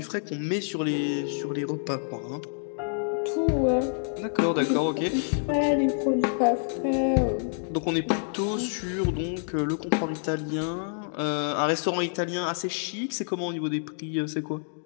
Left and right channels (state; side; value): silent; right; digital silence